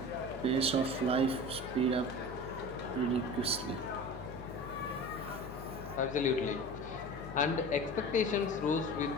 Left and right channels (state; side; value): noise; left; hum, 13 dB below the sound